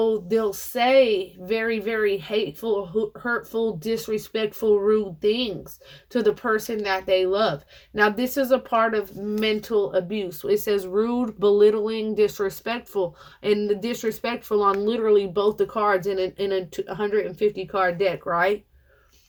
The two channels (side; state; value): both; identical; correlation 1.00